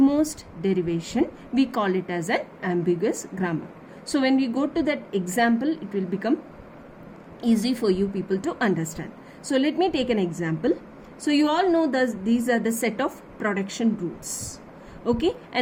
derivation, we call it as an ambiguous grammar. So when we go to that example, it will become easy for you people to understand. So let me take an example. So you all know that these are the set of production rules. Okay,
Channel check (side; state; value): both; identical; correlation 1.00